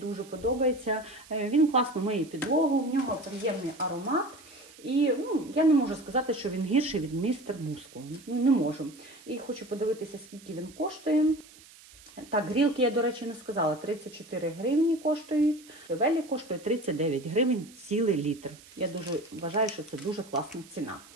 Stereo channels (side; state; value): right; noise; hiss, 22 dB below the sound